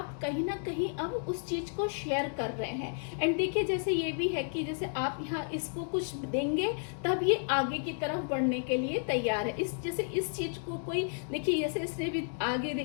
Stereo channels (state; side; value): silent; right; 56 dB below the other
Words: कहीं ना कहीं अब उस चीज को शेयर कर रहे हैं। एंड देखिए जैसे ये भी है कि जैसे आप यहाँ इसको कुछ देंगे तब ये आगे की तरफ बढ़ने के लिए तैयार है। जैसे इस चीज को कोई, देखिए जैसे इसने भी आगे